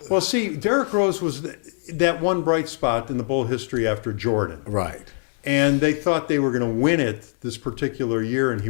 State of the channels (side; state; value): right; silent; digital silence